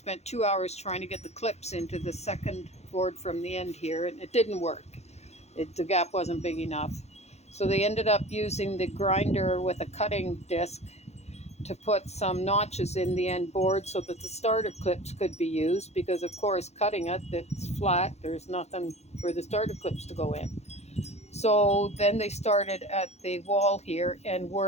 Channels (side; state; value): right; late; 0.31 ms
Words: 2 hours trying to get the clips into the second board from the end here, and it didn't work. The gap wasn't big enough. So they ended up using the grinder with a cutting disc to put some notches in the end board so that the starter clips could be used, because of course cutting it's flat, there's nothing for the starter clips to go in. So then they started at the wall here and